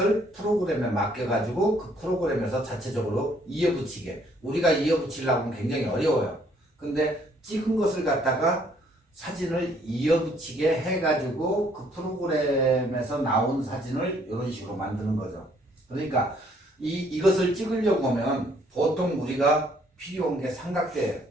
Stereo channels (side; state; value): both; normal; correlation 0.65